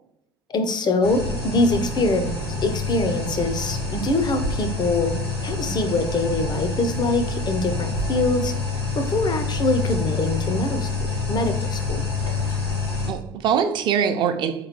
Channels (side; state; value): both; normal; correlation 0.35